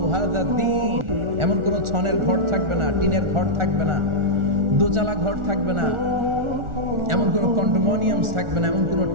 হাযা দ্বীন। এমন কোন ছনের ঘর থাকবে না, টিনের ঘর থাকবে না, দোচালা ঘর থাকবে না, এমন কোন কন্ডোমিনিয়ামস থাকবে না, এমন কোন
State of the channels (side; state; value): left; late; 1.4 ms